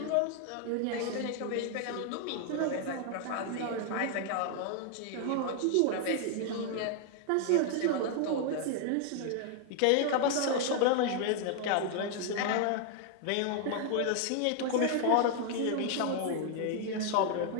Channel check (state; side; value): different; both; correlation 0.00